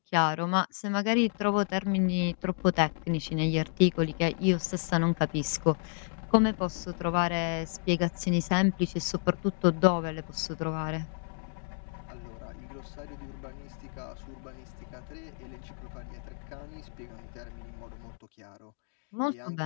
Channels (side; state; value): right; silent; 57 dB below the other